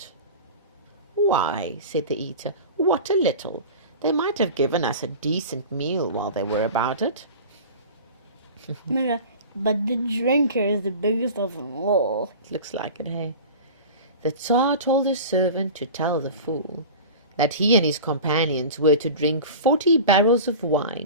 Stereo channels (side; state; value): both; inverted; correlation -0.35